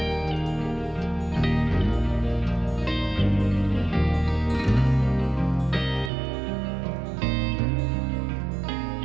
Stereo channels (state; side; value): drops out; left; at 6.1 s